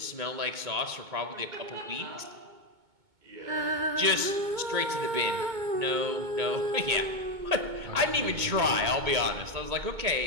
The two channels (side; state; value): left; late; 2.2 ms